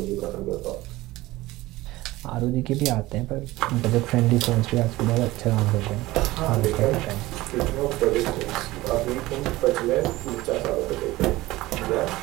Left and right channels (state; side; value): quieter; left; 18.5 dB